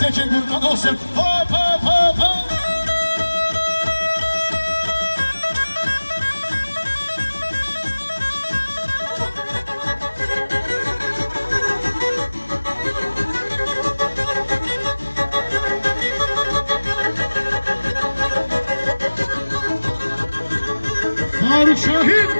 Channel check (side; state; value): both; inverted; correlation -1.00